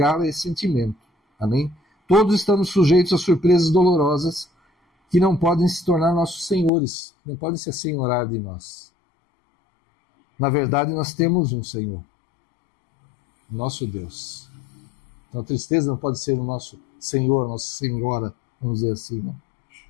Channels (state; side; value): drops out; right; at 6.7 s